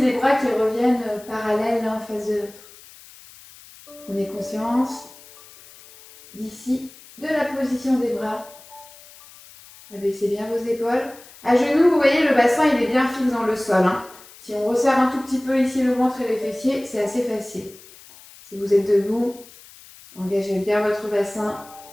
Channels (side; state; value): left; noise; hiss, 21 dB below the sound